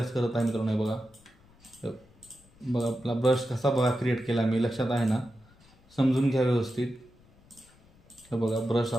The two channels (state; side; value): noise; left; rumble, 29 dB below the sound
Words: करत आहे मित्रांनो. हे बघा, बघा आपला ब्रश कसा बघा क्रिएट केला मी, लक्षात आहे ना, समजून घ्या व्यवस्थित. हे बघा ब्रश